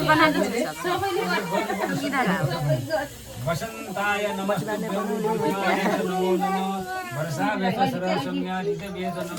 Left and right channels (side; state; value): both; identical; correlation 1.00